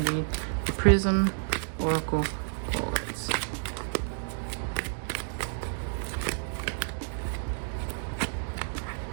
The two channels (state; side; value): silent; left; digital silence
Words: the Prism Oracle cards.